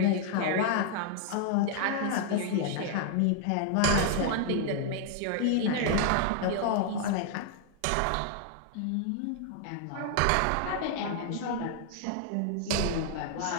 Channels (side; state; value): both; different; correlation 0.00